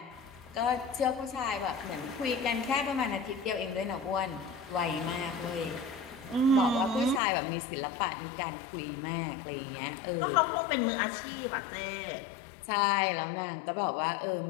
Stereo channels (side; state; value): right; drops out; at 7.2 s